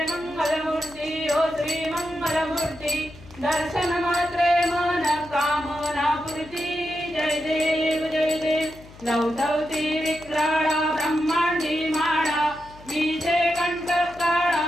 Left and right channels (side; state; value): left; noise; hum, 21 dB below the sound